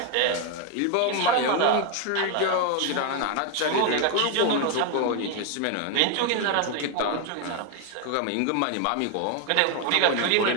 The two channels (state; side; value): different; both; correlation 0.01